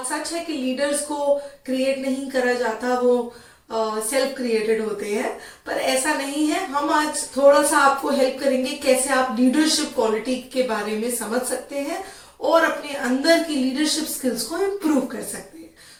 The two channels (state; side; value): identical; both; correlation 1.00